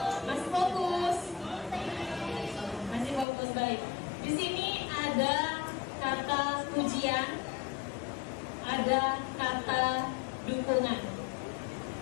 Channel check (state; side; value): drops out; right; at 3.2 s